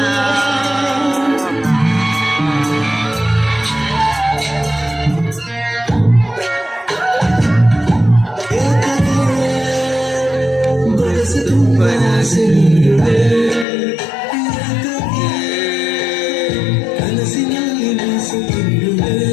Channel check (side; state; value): right; drops out; at 13.7 s